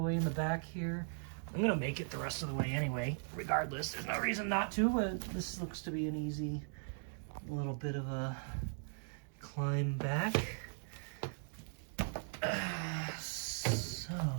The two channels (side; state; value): left; silent; digital silence